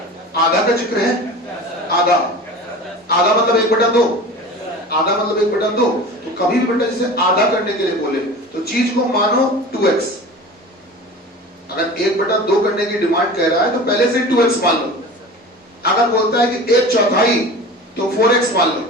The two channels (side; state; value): both; normal; correlation 0.36